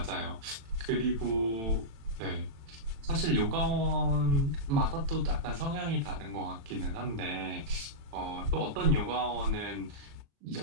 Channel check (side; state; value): left; late; 36 ms